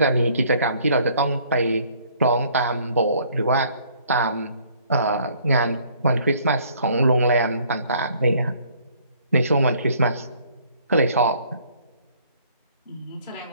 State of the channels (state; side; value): inverted; both; correlation -0.60